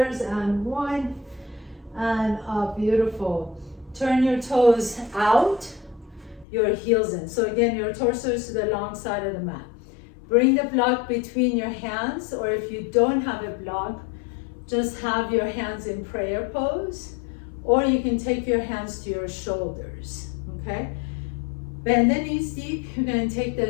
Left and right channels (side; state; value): right; drops out; at 6.5 s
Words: and 1, and up, beautiful. Turn your toes out, your heels in. So again, your torso is to the long side of the mat. Bring the block between your hands, or if you don't have a block, just have your hands in prayer pose, or you can take your hands to your shoulders, okay? Bend the knees deep. You're going to take